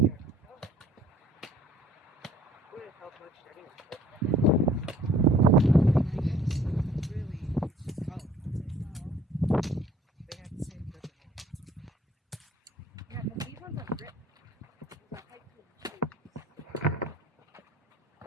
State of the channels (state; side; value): normal; both; correlation 0.55